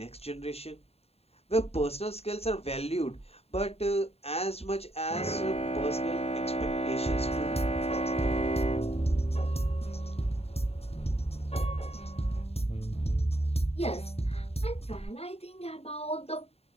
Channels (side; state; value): right; late; 0.29 ms